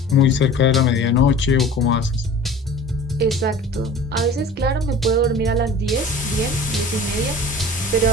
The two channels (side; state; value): both; normal; correlation 0.42